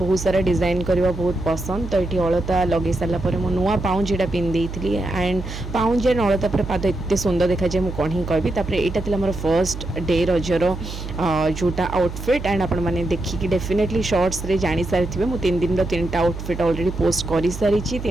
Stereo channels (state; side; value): noise; right; hum, 8 dB below the sound